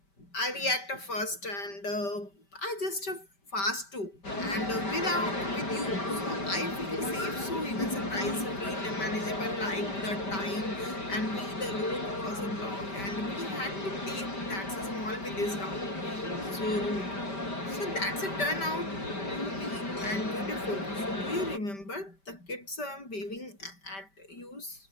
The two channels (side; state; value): right; late; 5.1 ms